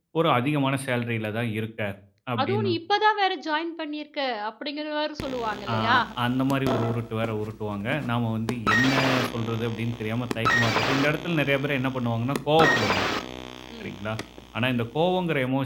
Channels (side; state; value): both; identical; correlation 1.00